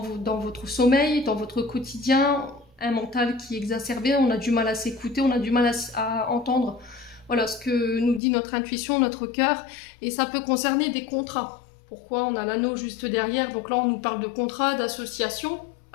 votre sommeil, dans votre quotidien, un mental qui est exacerbé, on a du mal à s'écouter, on a du mal à entendre voilà, ce que nous dit notre intuition, notre cœur, et ça peut concerner des contrats. Pourquoi on a l'anneau juste derrière? Donc là, on nous parle de contrat, d'association.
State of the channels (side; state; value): right; drops out; at 8.2 s